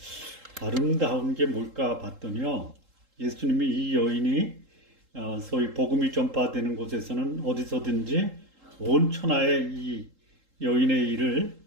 아름다운 게 뭘까 봤더니요. 예수님이 이 여인이 소위 복음이 전파되는 곳에서는 어디서든지 온 천하에 이 여인의 일을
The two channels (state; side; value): late; left; 3.8 ms